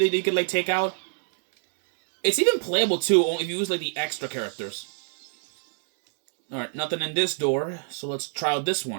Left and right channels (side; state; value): left; silent; digital silence